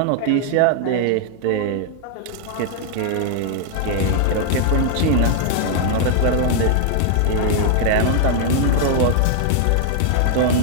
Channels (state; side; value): different; both; correlation 0.00